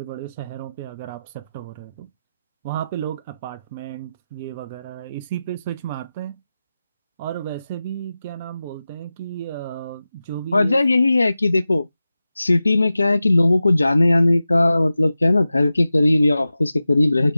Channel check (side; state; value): both; inverted; correlation -0.94